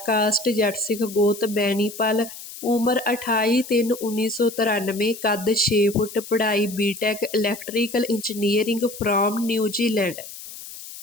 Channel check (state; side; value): noise; left; hiss, 13 dB below the sound